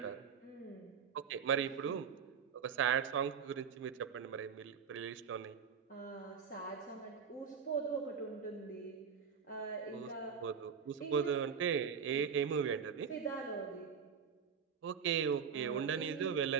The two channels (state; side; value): quieter; left; 6.8 dB